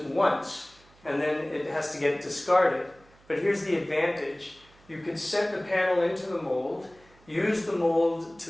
once, and then it has to get discarded. But here's the advantage. You could set the panel into the mold, use the mold to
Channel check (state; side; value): noise; right; hum, 28 dB below the sound